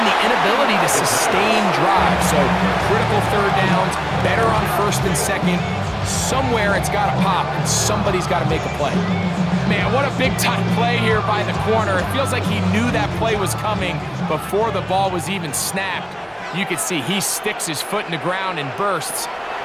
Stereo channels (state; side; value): identical; both; correlation 1.00